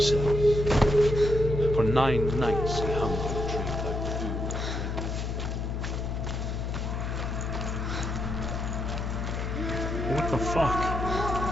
For 9 nights he hung from the tree without food or drink. What the fuck?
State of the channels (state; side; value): noise; left; hum, 2 dB below the sound